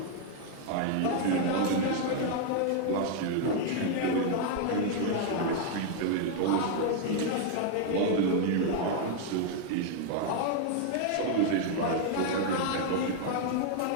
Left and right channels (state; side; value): different; both; correlation 0.00